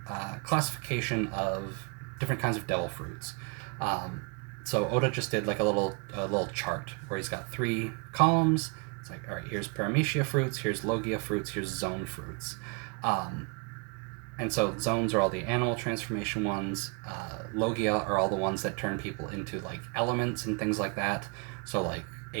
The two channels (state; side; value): quieter; left; 32.4 dB